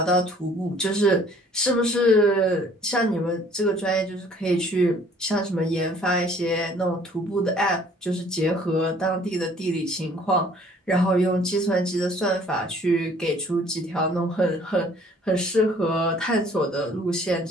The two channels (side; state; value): both; normal; correlation 0.56